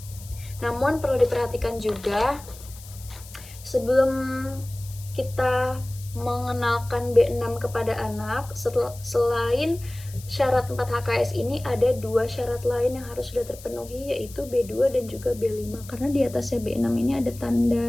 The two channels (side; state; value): left; noise; hiss, 18 dB below the sound